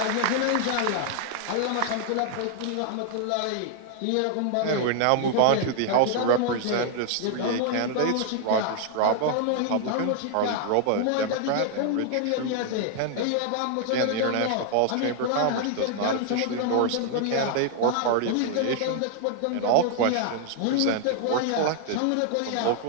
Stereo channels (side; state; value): both; different; correlation 0.00